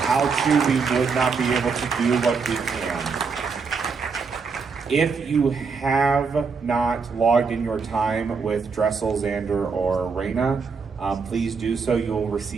you, we would not be able to do what we can. If you have not logged in your time with Dressel, Xander, or Raina, please do so. You will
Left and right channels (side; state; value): left; quieter; 5.2 dB